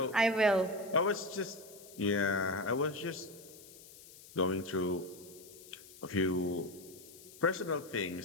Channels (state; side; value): noise; left; hiss, 19 dB below the sound